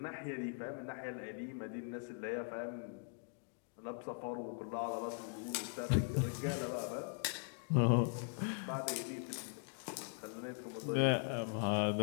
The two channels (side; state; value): right; silent; 51 dB below the other